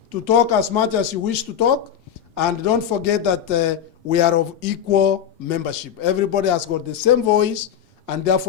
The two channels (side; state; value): right; quieter; 9.0 dB